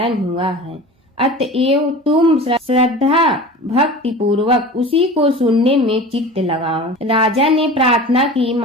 हुआ है। अतएव तुम श्रद्धा भक्ति पूर्वक उसी को सुनने में चित्त लगाओ। राजा ने प्रार्थना की,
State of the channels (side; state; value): both; normal; correlation 0.36